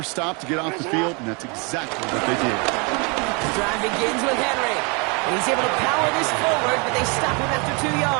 stop to get off the field, and that's exactly what they did. The drive begins with Henry. And he's able to power this forward, but they stop him after 2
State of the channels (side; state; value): left; quieter; 32.1 dB